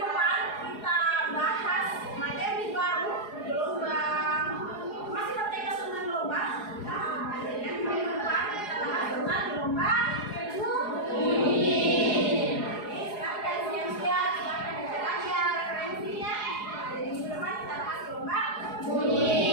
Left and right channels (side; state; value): right; late; 4.8 ms